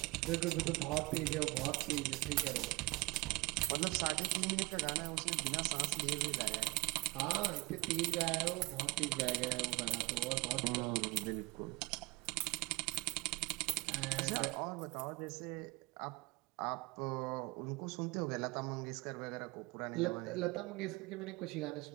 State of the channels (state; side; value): quieter; left; 25.0 dB